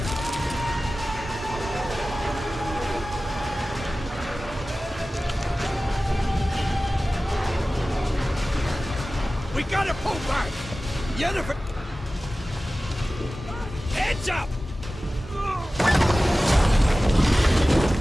We gotta pull back! Yennefer... Heads up!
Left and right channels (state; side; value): normal; both; correlation 0.96